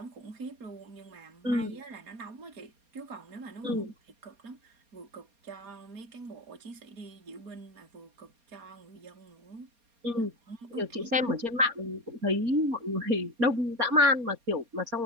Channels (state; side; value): late; left; 4.3 ms